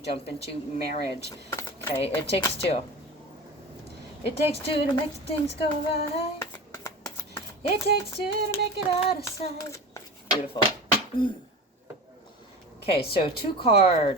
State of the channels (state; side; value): normal; both; correlation 0.31